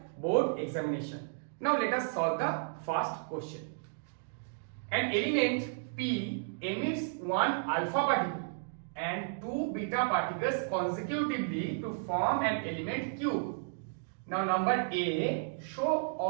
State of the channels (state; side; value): silent; left; digital silence